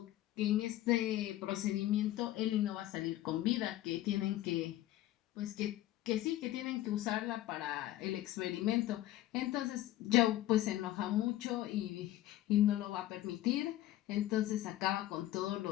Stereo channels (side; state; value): right; quieter; 14.6 dB